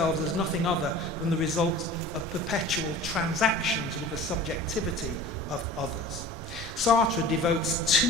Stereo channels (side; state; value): both; normal; correlation 0.41